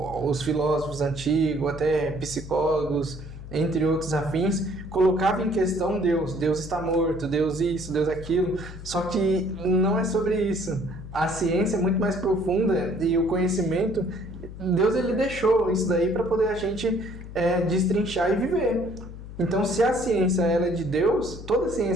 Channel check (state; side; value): noise; left; hum, 12 dB below the sound